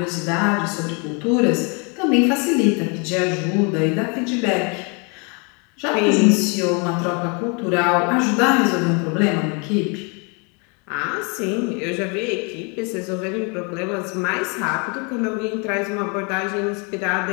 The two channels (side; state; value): right; quieter; 33.5 dB